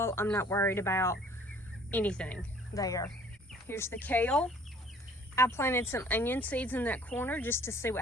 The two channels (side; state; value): both; normal; correlation 0.54